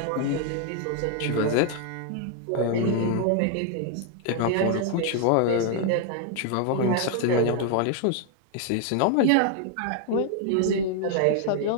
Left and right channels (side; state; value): both; different; correlation 0.00